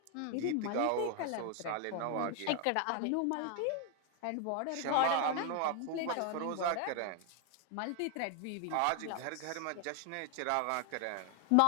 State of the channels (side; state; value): both; different; correlation 0.00